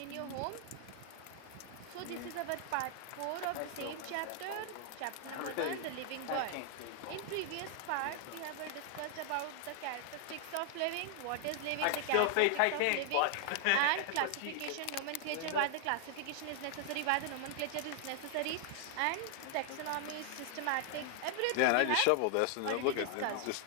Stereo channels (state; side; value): different; both; correlation 0.00